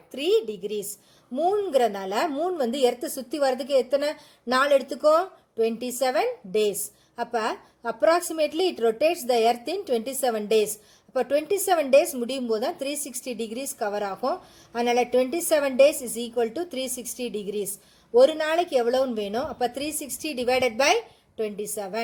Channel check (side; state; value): both; identical; correlation 1.00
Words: டிகிரிஸ். மூணுங்கிறனால மூன் வந்து எர்த்தை சுற்றி வர்றதுக்கு எத்தனை நாள் எடுத்துக்கும்? 27 டேஸ். அப்போ approximately it rotates the Earth in 27 days. அப்போ 27 டேஸ் முடியும் போது தான் 360 டிகிரிஸ் கவர் ஆகும். அதனால் 27 days is equal to 360 degrees. ஒரு நாளைக்கு எவ்வளோன்னு வேணும்? அப்போ 360 டிவைடட் பை